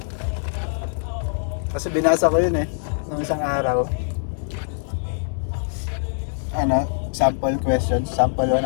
Kasi binasa ko yun eh, nung isang araw. Ano, sample questions, sample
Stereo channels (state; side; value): silent; right; digital silence